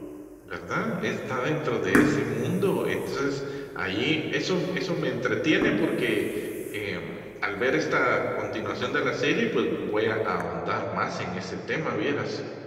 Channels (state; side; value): identical; both; correlation 1.00